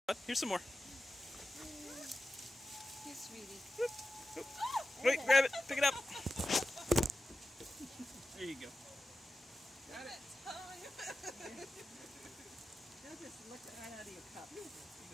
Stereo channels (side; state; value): both; normal; correlation 0.93